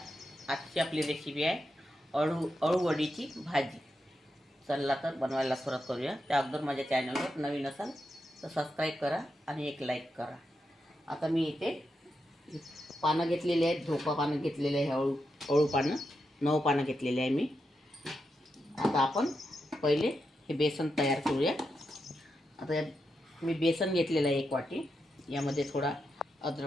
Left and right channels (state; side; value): normal; both; correlation 0.86